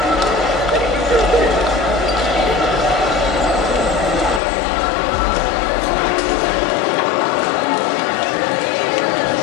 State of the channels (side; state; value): right; drops out; at 4.4 s